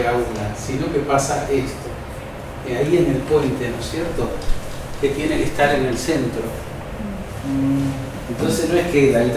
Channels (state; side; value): identical; both; correlation 1.00